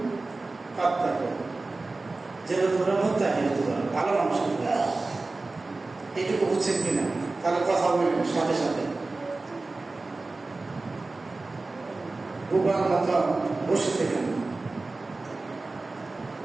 পাত্তা করি যেন তোমরা মুত্তাকি হতে পারো, ভালো মানুষ হতে পারো। এইটুকু বুঝছেন কিনা? তাহলে কথা বলবেন সাথে সাথে। বুবার মতো বসে থেকেন।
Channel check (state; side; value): quieter; left; 3.4 dB